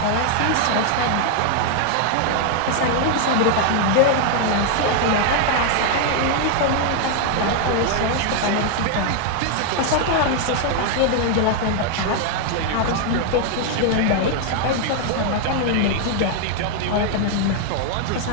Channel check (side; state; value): both; different; correlation 0.00